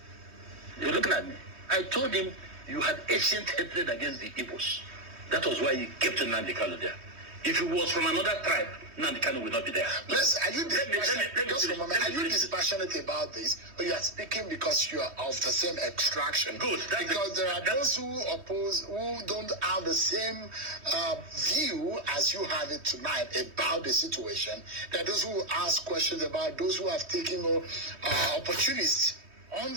you're looking at me. I told him you had ancient hatred against the Igbos. That was why he kept Nnamdi Kanu there. If he was from another tribe, Nnamdi Kanu would not be there. Are you dispassionate about this, or you are speaking because you are of the same extraction? Good. Because there are those who oppose, who don't have the same view as you have it tonight about the situation. There are those who ask questions about those who have taken opportunists on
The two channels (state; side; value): late; left; 3.2 ms